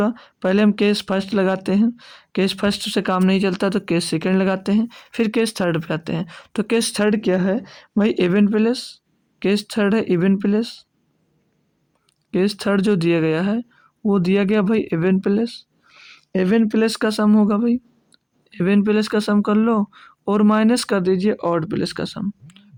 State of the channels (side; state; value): both; identical; correlation 1.00